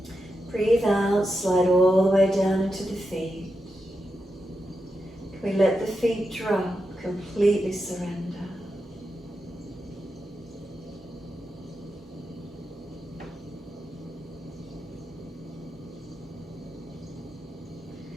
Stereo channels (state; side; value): normal; both; correlation 0.87